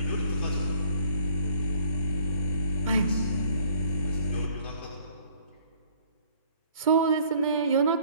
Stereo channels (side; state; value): both; inverted; correlation -0.58